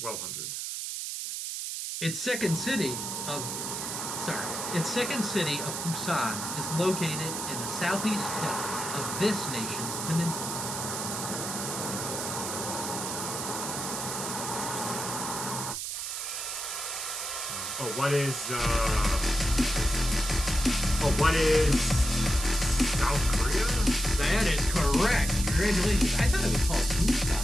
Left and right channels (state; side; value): noise; right; hiss, 4 dB below the sound